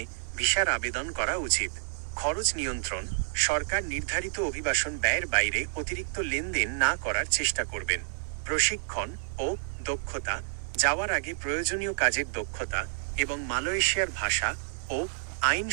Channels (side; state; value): left; silent; digital silence